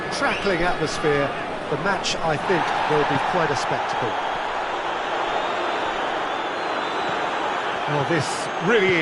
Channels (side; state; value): both; identical; correlation 1.00